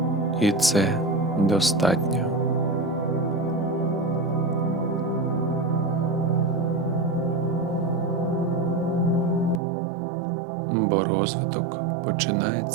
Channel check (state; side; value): drops out; left; at 9.6 s